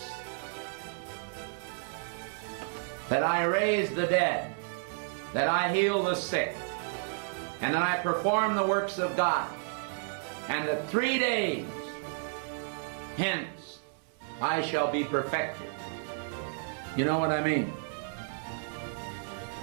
that I raise the dead, that I heal the sick, and that I perform the works of God, and that 3 days hence I shall be perfected." You know what I mean?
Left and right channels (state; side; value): silent; left; 57 dB below the other